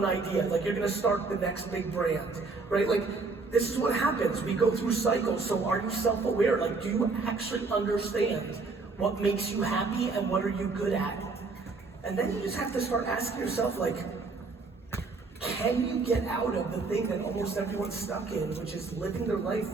idea. Like, you're gonna start the next big brand, right? Like, this is what happens. We go through cycles. So are you self-aware? Like, do you actually understand what makes you happy and what are you good at? And then you just have to start asking yourself, like, can you get out of the thing that almost everyone's stuck in, which is living their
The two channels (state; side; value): quieter; left; 4.0 dB